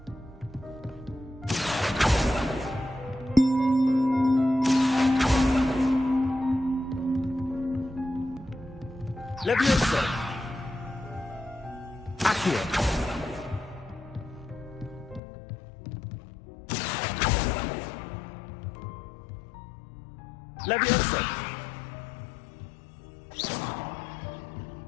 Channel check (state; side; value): drops out; right; at 15.2 s